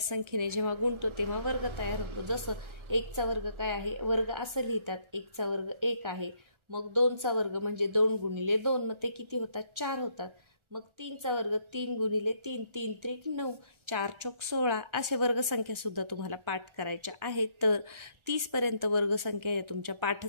संख्येने जेव्हा गुणतो तेव्हा वर्ग तयार होतो। जसं 1 चा वर्ग काय आहे, वर्ग असं लिहितात, 1 चा वर्ग 1 आहे, मग 2 चा वर्ग म्हणजे 2 गुणिले 2, मग ते किती होतात, 4 होतात। मग 3चा वर्ग 3 गुणिले 3, 3 त्रिक 9, 4 चौक 16 असे वर्गसंख्या सुद्धा तुम्हाला पाठ करायच्या आहेत. तर 30 पर्यंत वर्गसंख्या या तुमच्या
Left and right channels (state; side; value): late; left; 1.3 ms